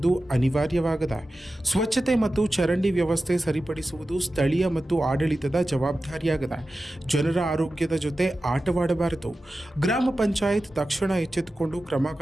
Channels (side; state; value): both; normal; correlation 0.94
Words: ಅನಿವಾರ್ಯವಾಗಿದೆ. ಸ್ವಚ್ಛತೆ ಮತ್ತು ಚರಂಡಿ ವ್ಯವಸ್ಥೆ ಸರಿಪಡಿಸುವುದು ಸ್ಥಳೀಯ ಮತ್ತು ಆಡಳಿತದ ಜವಾಬ್ದಾರಿಯಾಗಿದೆ. ಜನರ ಆರೋಗ್ಯದ ಜೊತೆ ಆಟವಾಡಬಾರದು. ಗ್ರಾಮ ಪಂಚಾಯತ್ ತಕ್ಷಣ ಎಚ್ಚೆತ್ತುಕೊಂಡು ಕ್ರಮ